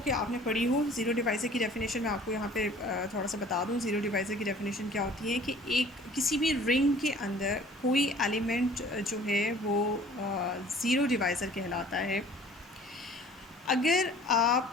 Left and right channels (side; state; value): both; normal; correlation 0.50